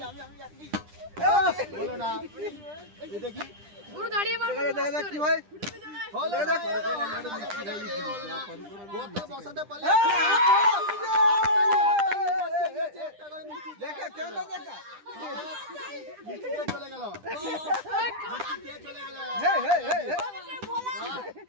বলো না। এই দেখি পুরো দাঁড়িয়ে মারো। দেখা কি হয় হলো গোটা বসাতে পারলে দেখা কেন দেখা মিস্টেক চলে গেল।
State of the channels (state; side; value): late; left; 10 ms